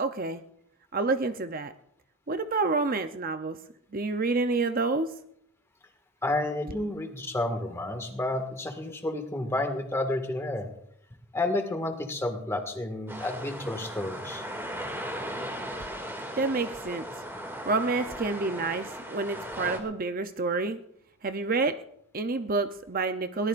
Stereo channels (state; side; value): normal; both; correlation 0.33